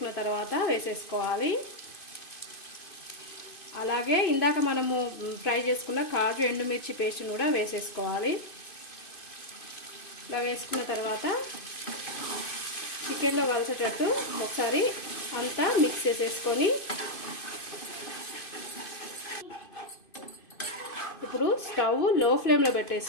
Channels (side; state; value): right; late; 2.5 ms